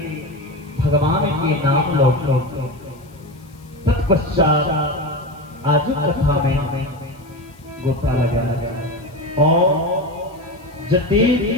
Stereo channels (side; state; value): left; noise; hiss, 29 dB below the sound